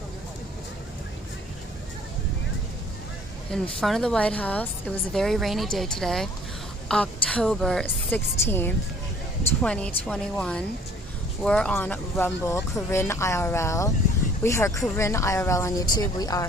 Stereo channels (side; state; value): both; normal; correlation 0.55